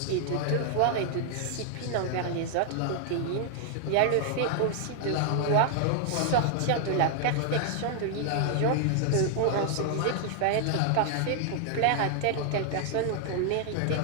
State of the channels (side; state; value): both; different; correlation 0.00